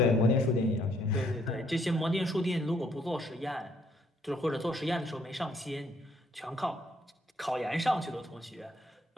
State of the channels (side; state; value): both; normal; correlation 0.68